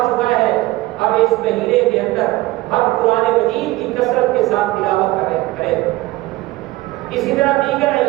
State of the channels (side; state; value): left; quieter; 18.7 dB